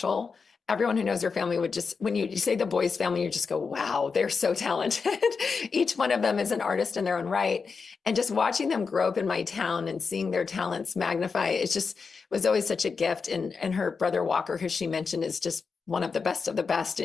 Everyone who knows her family would just, when you say the Boys family, you just go, wow, they're so talented. Each one of them is an artist in their own right. And just watching them grow up in my town and seeing their talents magnify, it just was always such a gift. And her brother Walker, who she mentioned, is just one of the best of the best.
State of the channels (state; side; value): quieter; right; 5.1 dB